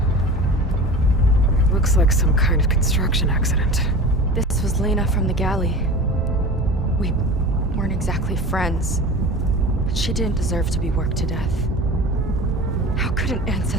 Looks like some kind of construction accident. This was Lena from the galley. We weren't exactly friends, but she didn't deserve to be worked to death. How could an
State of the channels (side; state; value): both; normal; correlation 0.35